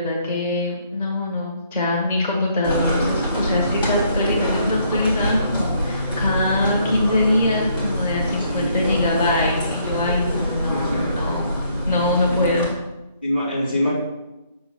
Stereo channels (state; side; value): inverted; both; correlation -0.68